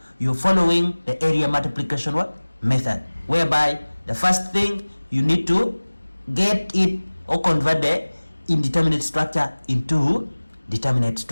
You're following the area multiplication method, whereby the first thing you need to get it or convert the indeterminate structure into determinate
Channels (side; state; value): both; inverted; correlation -1.00